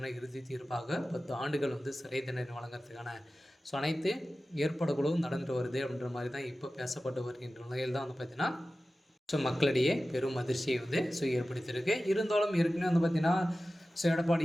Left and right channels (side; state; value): both; normal; correlation 0.95